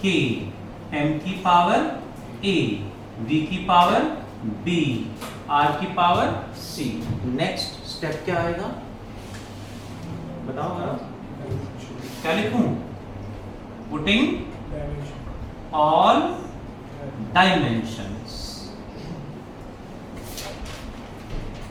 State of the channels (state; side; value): identical; both; correlation 1.00